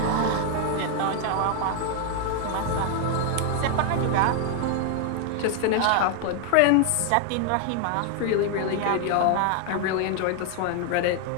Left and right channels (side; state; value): both; different; correlation 0.00